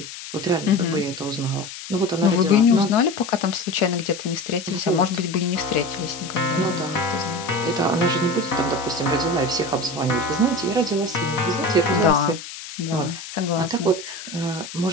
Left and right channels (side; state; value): left; noise; hiss, 12 dB below the sound